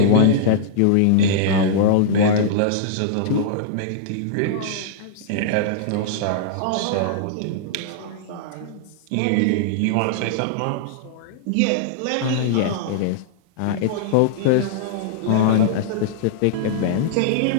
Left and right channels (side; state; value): both; different; correlation -0.02